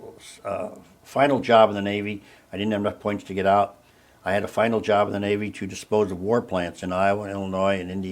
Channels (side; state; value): both; identical; correlation 1.00